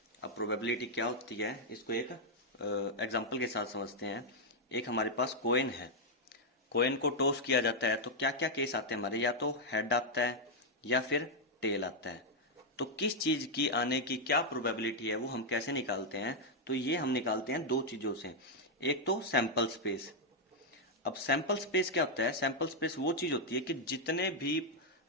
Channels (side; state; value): both; normal; correlation -0.01